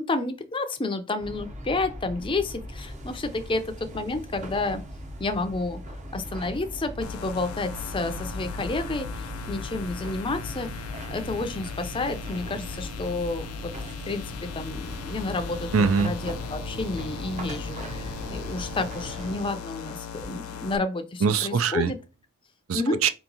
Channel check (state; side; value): normal; both; correlation 0.45